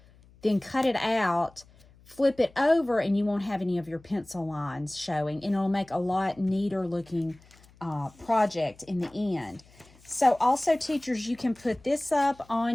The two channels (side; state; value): left; noise; hum, 27 dB below the sound